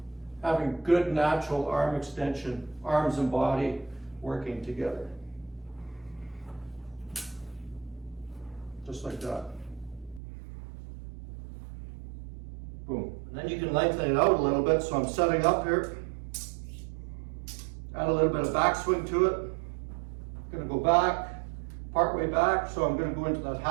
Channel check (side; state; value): left; drops out; at 10.2 s